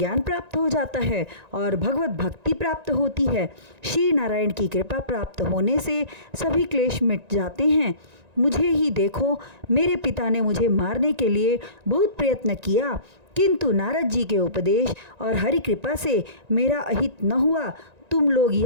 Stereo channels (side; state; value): left; late; 1.9 ms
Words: प्राप्त हो जाता है और भगवत भक्ति प्राप्त होती है। श्री नारायण की कृपा प्राप्त होने से सभी क्लेश मिट जाते हैं। मुझे ही देखो, मेरे पिता ने मुझे मारने के लिए बहुत प्रयत्न किया, किंतु नारद जी के उपदेश और हरि कृपा से मेरा अहित न हुआ। तुम लोग